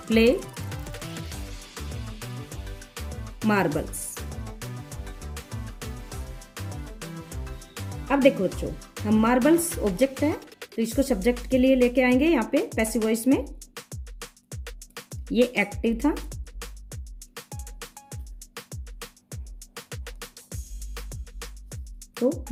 प्ले मार्बल्स। अब देखो बच्चों, हम मार्बल्स ऑब्जेक्ट है तो इसको सब्जेक्ट के लिए लेके आएंगे यहाँ पे पैसिव वॉइस में। ये एक्टिव था, तो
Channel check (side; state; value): both; identical; correlation 1.00